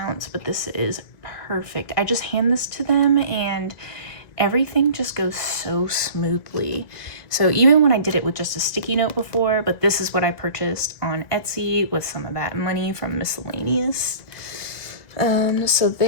But this is perfect. I just hand this to them and everything just goes so smoothly. So even when I did it with just a sticky note before, but this is what I purchased on Etsy with some of that money from miscellaneous. So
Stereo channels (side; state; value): right; late; 1.9 ms